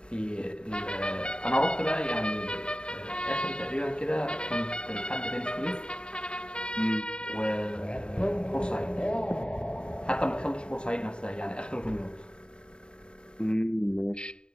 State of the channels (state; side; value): late; right; 0.051 ms